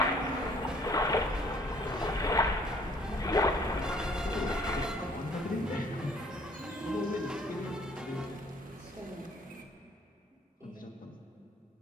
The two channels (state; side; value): normal; both; correlation 0.59